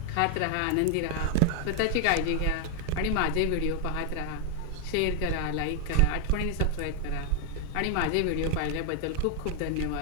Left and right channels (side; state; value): both; different; correlation 0.00